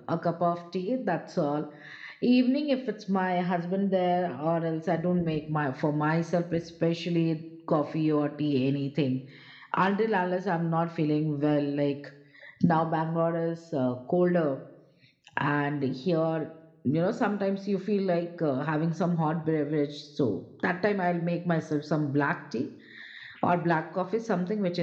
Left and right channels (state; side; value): identical; both; correlation 1.00